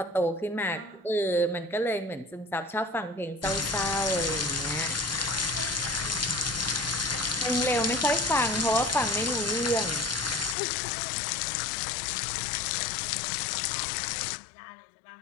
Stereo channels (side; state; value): right; drops out; at 10.6 s